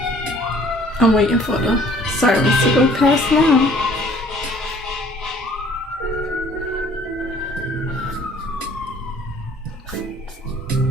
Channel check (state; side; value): normal; both; correlation 0.55